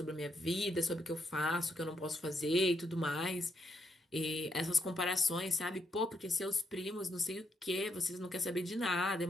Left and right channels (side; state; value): both; normal; correlation 0.78